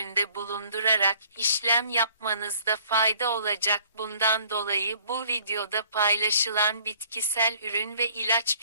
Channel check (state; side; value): inverted; both; correlation -0.57